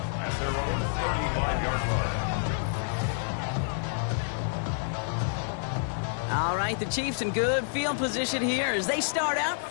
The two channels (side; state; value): right; silent; digital silence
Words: At their own 35-yard line. All right, the Chiefs in good field position here as they start out